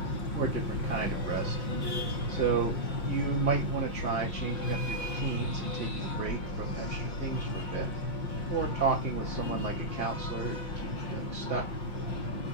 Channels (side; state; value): right; late; 5.7 ms